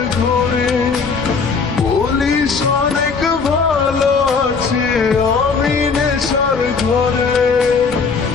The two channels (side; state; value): right; quieter; 5.1 dB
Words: ঘরে, বলিস অনেক ভালো আছি আমি নেশার ঘরে।